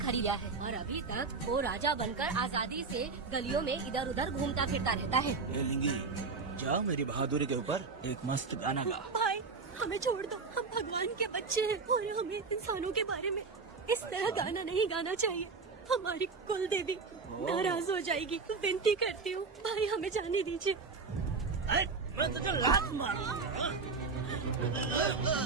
है और अभी तक वो राजा बनकर आजादी से गलियों में इधर उधर घूमता फिरता रहता है। जाओ मेरी बहादुरी के ऊपर एक मस्त गाना गा। भाई हमें छोड़ दो, हम भगवान के बच्चे हैं और हमें इंसानों के बारे में इस तरह गाना नहीं गाना चाहिए। हमारी कुल देवी नाराज हो जाएगी। विनती करती हूँ भाई, हमें जाने दीजिए। मैं तुझे लात मारूंगा।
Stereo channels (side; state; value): left; quieter; 4.5 dB